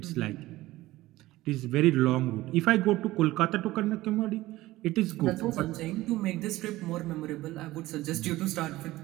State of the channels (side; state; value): left; quieter; 17.4 dB